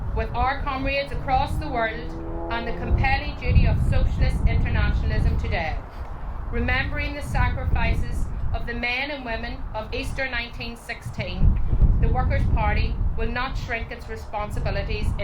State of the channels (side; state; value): both; identical; correlation 1.00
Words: with our comrades across the world and the compelling duty of socialist internationalism today, remembering the sacrifices of the men and women of Easter 1916, the Workers' Party will not shrink its responsibilities